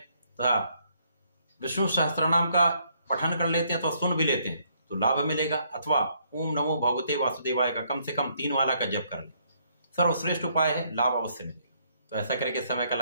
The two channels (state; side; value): inverted; both; correlation -0.70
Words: विष्णु सहस्त्रनाम का पठन कर लेते हैं तो सुन भी लेते हैं तो लाभ मिलेगा। अथवा ओम नमो भगवते वासुदेवाय का कम से कम 3 माला का जप कर लें, सर्वश्रेष्ठ उपाय है, लाभ अवश्य मिलेगा। तो ऐसा करके समय का